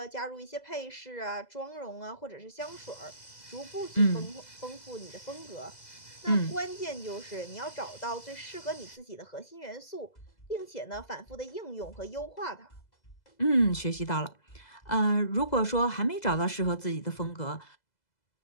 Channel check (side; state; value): right; late; 2.0 ms